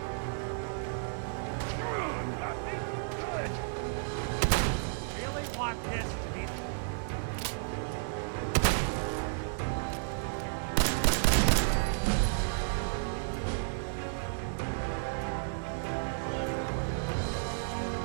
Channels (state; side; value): silent; left; digital silence